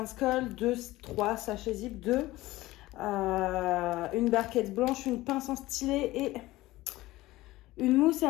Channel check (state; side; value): quieter; right; 17.9 dB